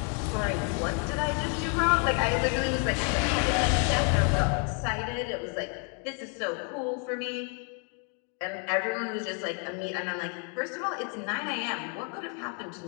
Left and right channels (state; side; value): quieter; right; 39.3 dB